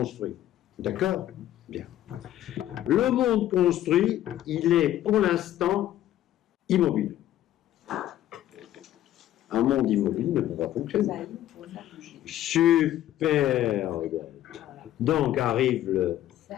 D'accord? Bien. Le monde construit, il est pour l'instant immobile. Un monde immobile ne peut pas fonctionner. Super. Donc arrive le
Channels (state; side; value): quieter; right; 12.9 dB